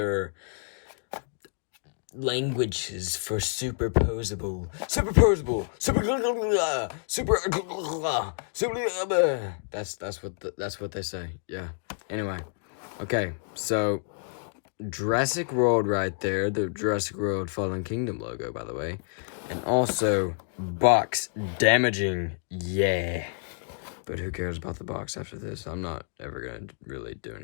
languages for superposable, that's what they say. Yeah. Anyway, okay, so Jurassic World right there, the Jurassic World Fallen Kingdom logo, by the way, and also box damaging, yeah. But who cares about the box after this? I'm not ever going to really do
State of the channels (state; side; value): silent; right; digital silence